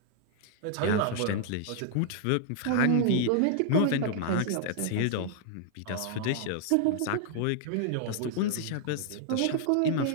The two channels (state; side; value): different; both; correlation -0.01